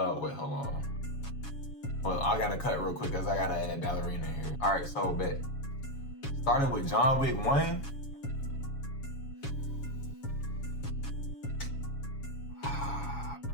hold on. Well, I gotta cut real quick because I gotta add Ballerina here. All right, so bet. Starting with John Wick 1.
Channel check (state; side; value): late; right; 7.2 ms